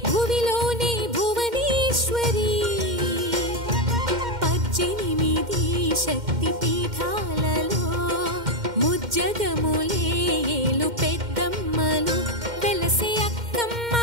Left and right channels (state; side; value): late; left; 2.1 ms